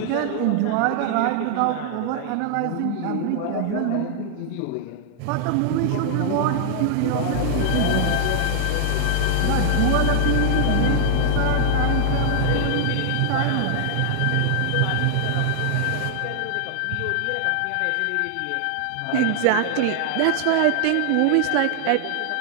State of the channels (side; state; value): both; different; correlation 0.00